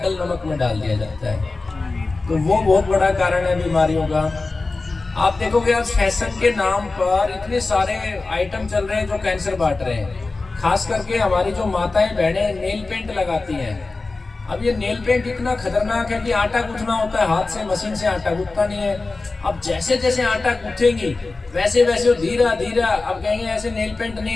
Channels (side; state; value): right; quieter; 3.6 dB